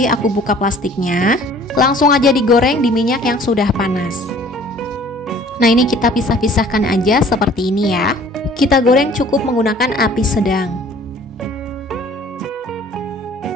aku buka plastiknya. Langsung aja digoreng di minyak yang sudah panas. Nah, ini kita pisah-pisahkan aja seperti ini ya. Kita goreng cukup menggunakan api sedang.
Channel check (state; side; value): normal; both; correlation 0.52